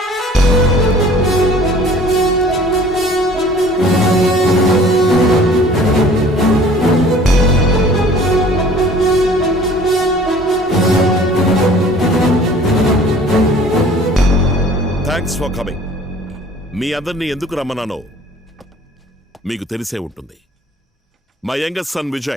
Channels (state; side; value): normal; both; correlation 0.50